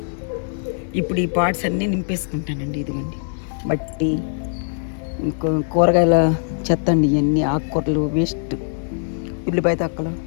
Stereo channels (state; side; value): silent; right; 58 dB below the other